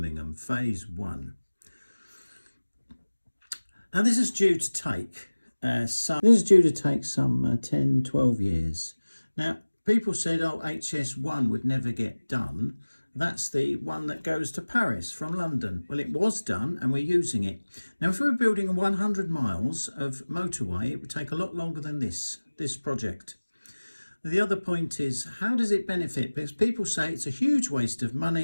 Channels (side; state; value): both; inverted; correlation -1.00